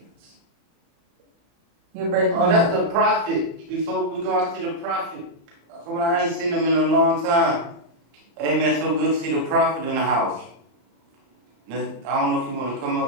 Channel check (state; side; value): late; left; 35 ms